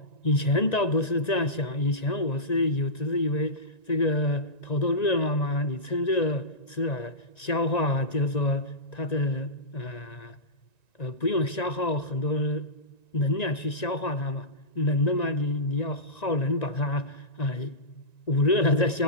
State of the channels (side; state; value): right; late; 1.9 ms